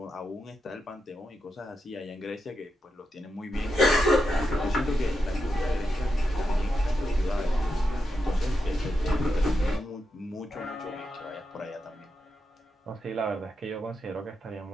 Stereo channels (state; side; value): normal; both; correlation 0.86